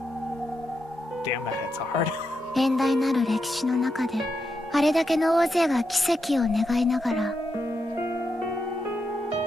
Damn, that hits hard. 遠大なる歴史の中であれだけの大勢が奇跡を願いながら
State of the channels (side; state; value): both; normal; correlation 0.85